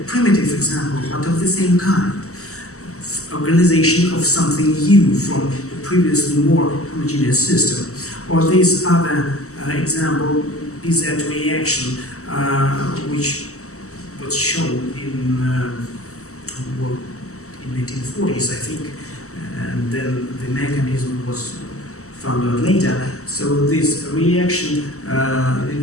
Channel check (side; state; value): right; late; 0.64 ms